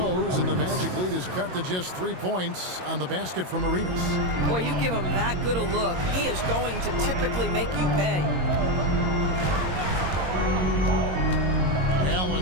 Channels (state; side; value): late; left; 22 ms